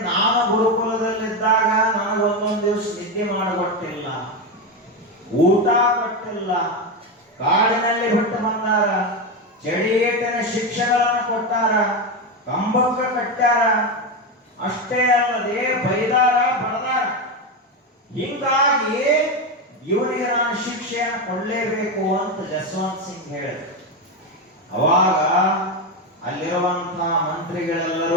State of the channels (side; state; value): both; normal; correlation 0.12